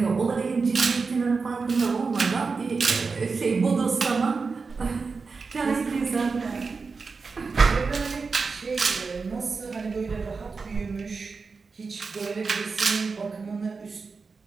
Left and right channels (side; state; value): left; quieter; 4.6 dB